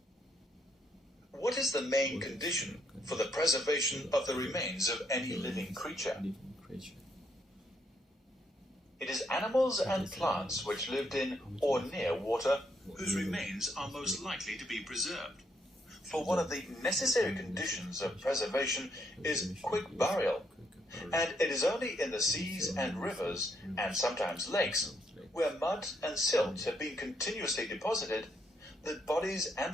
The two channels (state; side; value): normal; both; correlation 0.74